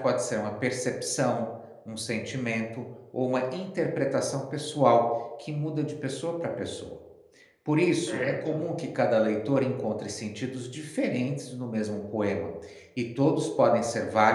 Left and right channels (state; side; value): identical; both; correlation 1.00